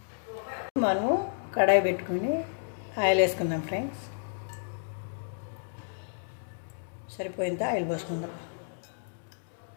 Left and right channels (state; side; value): silent; right; digital silence